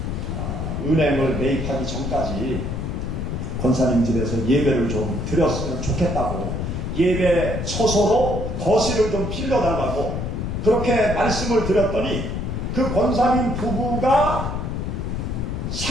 은행을 매입하기 전까지 권사님 집에서 예배를 좀 드렸으면 좋겠다고 예배 처소로 거실을 좀 빌려달라고 그렇게 말씀을 드렸더니 그 권사님 부부가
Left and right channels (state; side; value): noise; left; rumble, 3 dB below the sound